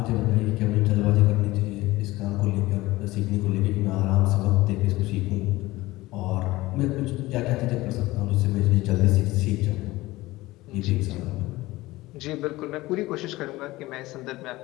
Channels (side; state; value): right; quieter; 19.0 dB